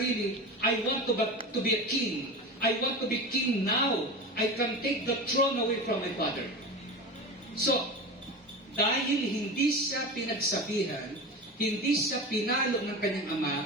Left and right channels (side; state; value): both; normal; correlation 0.28